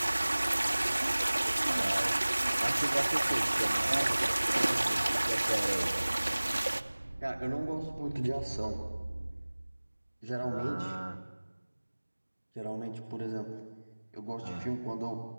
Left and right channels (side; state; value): both; inverted; correlation -1.00